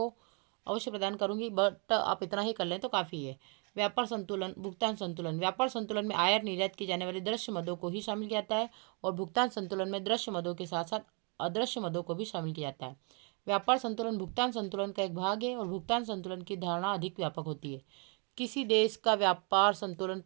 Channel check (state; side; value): quieter; left; 36.1 dB